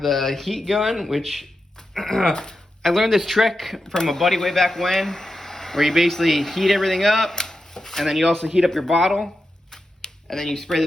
the heat gun, which I learned this trick from a buddy way back when, where you basically heat everything up, and then you also heat up your bottle, and then you spray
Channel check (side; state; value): both; normal; correlation 0.89